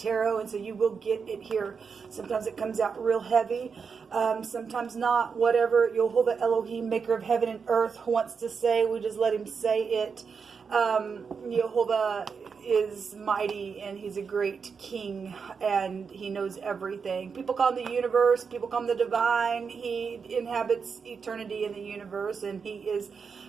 and so you will get it here. Sometimes it comes out real heavy, sometimes not. Whatever Yehovah Elohim, maker of heaven and earth, wants to say, we just let him say it. Yehovah is mighty, and he's a great king, and he knows everything. People call him the universe, people call him the divine. He inhabits eternity in the universe, and he is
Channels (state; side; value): quieter; left; 5.8 dB